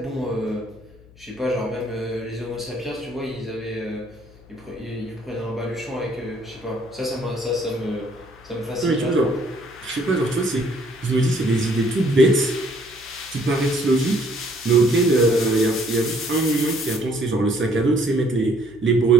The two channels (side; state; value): left; noise; hum, 24 dB below the sound